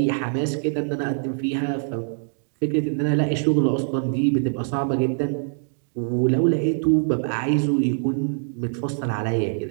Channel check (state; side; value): silent; left; digital silence